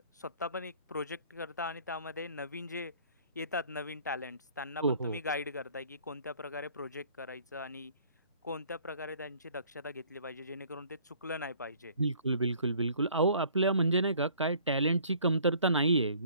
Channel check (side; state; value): both; inverted; correlation -0.55